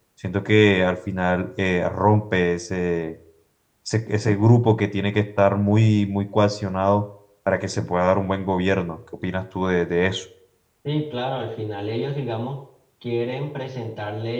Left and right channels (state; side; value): identical; both; correlation 1.00